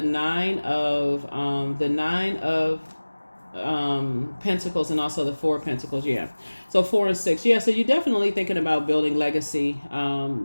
Nine of Pentacles, and also the Four of Pentacles. Yeah, so 4 and 6. Yeah, so you're definitely thinking about building legacy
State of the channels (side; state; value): both; inverted; correlation -1.00